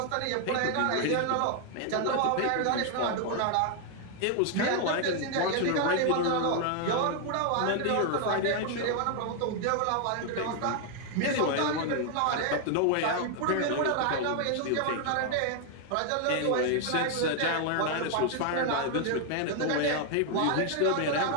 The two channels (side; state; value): both; different; correlation 0.00